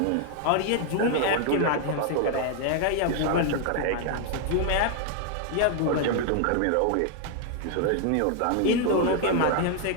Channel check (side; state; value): both; different; correlation 0.00